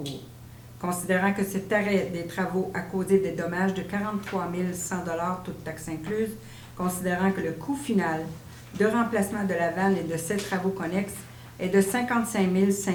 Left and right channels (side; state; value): both; identical; correlation 1.00